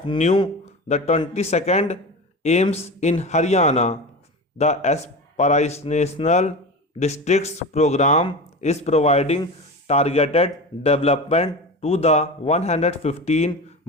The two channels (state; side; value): normal; both; correlation 0.27